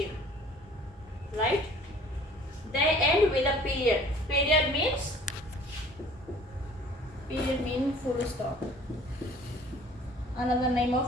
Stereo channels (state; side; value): normal; both; correlation 0.51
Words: Right? They end with a period. Period means full stop. Another name